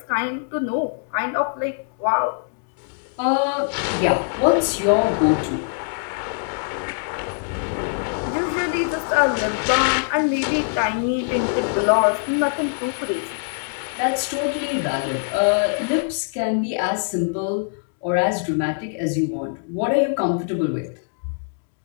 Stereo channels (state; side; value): silent; right; digital silence